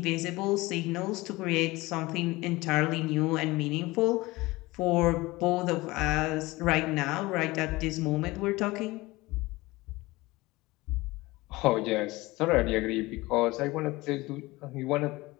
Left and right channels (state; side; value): quieter; right; 20.8 dB